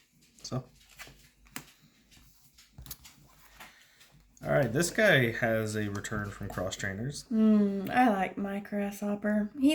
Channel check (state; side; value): identical; both; correlation 1.00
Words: So, all right, this guy has a return from cross trainers. I like my grasshopper.